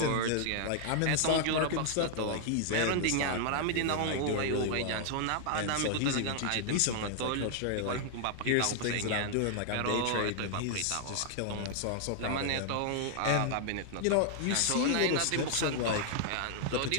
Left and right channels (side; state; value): both; different; correlation 0.00